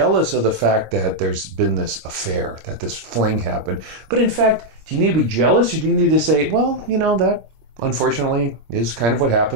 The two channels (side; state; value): left; late; 26 ms